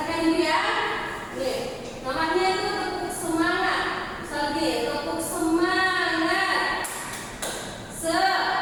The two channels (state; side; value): identical; both; correlation 1.00